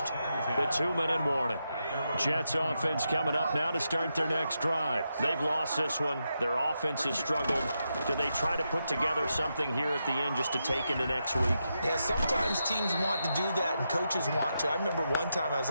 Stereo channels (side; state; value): both; inverted; correlation -0.85